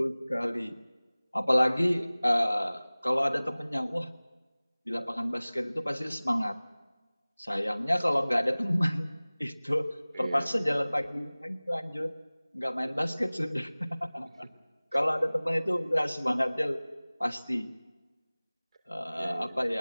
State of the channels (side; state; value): both; inverted; correlation -0.99